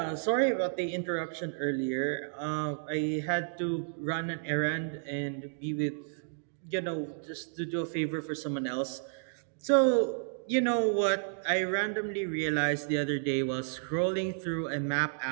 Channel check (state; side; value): silent; left; digital silence